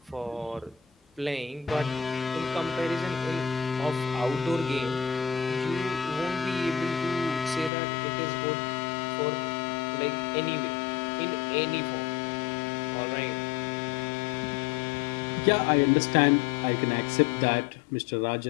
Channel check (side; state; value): right; drops out; at 7.7 s